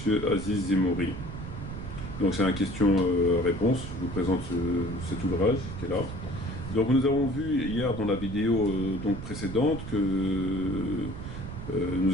Aziz Zemouri. Donc c'est un question-réponse, je vous présente cet ouvrage qui est là. Donc nous avons vu hier dans la vidéo donc précédente que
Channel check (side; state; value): right; noise; rumble, 8 dB below the sound